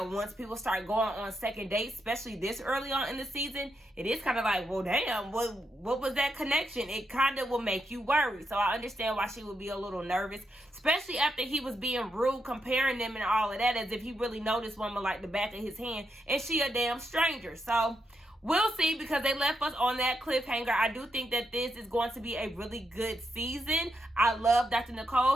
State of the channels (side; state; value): both; normal; correlation 0.82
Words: people start going on second dates, especially this early on in the season, it is kind of like, well, damn, what was that connection? It kind of will make you worry. So I understand why she would be a little nervous, especially after he was being rude, comparing them and all of that, as if he really noticed woman like the back of his hand, and she a damn stranger. So we'll see, because they left us on that cliffhanger. I do think that this is going to be a really good season. I love Dr.